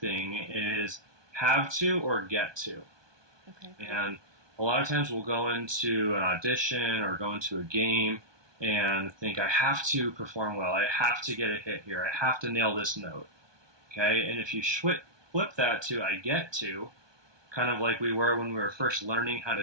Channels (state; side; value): late; left; 1.2 ms